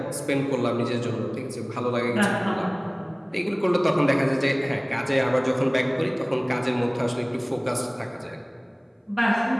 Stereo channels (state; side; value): identical; both; correlation 1.00